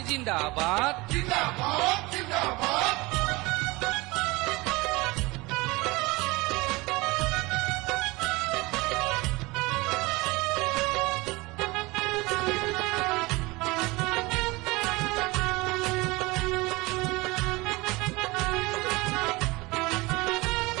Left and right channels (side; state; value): left; quieter; 23.1 dB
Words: জিন্দাবাদ। জিন্দাবাদ জিন্দাবাদ।